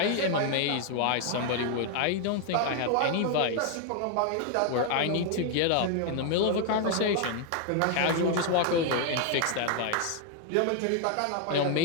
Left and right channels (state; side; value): different; both; correlation 0.00